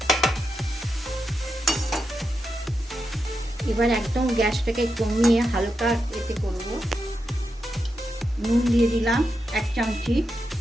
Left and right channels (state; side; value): normal; both; correlation 0.86